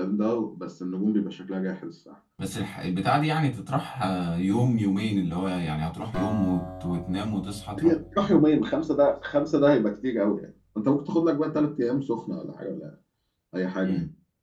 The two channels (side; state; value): both; identical; correlation 1.00